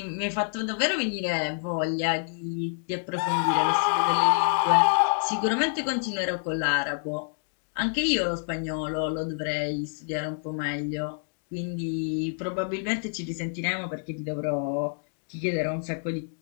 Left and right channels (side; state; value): right; silent; digital silence